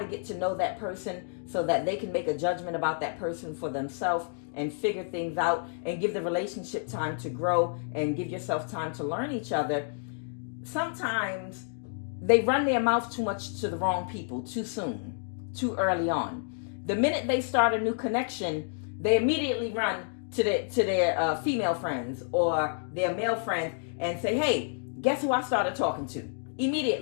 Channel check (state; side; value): silent; right; digital silence